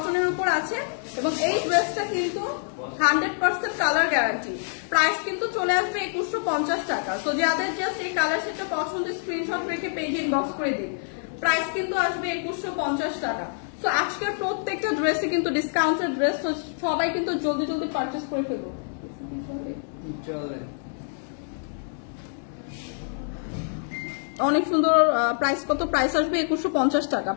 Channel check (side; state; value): right; silent; digital silence